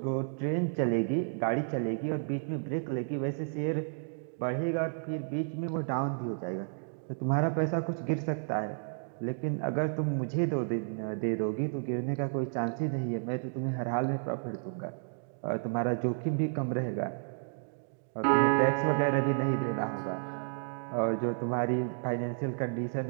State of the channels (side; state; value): left; silent; digital silence